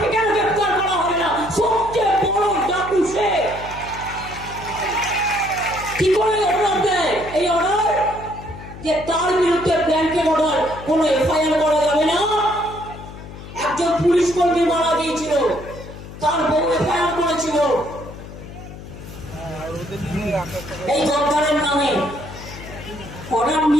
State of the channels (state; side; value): noise; left; hum, 14 dB below the sound